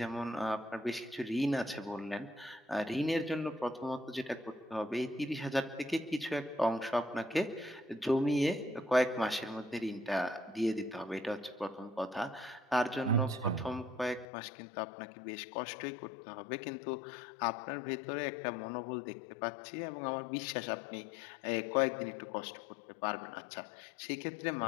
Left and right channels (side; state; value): right; drops out; at 14.2 s